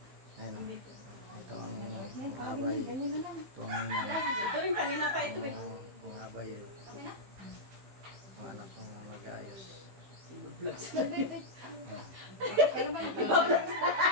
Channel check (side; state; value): left; late; 15 ms